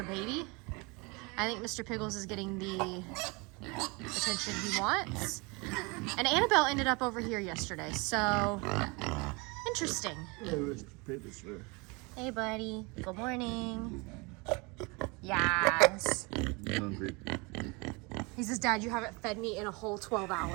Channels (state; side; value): quieter; left; 28.1 dB